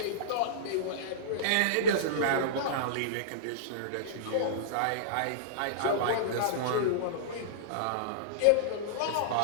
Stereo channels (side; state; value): both; different; correlation -0.03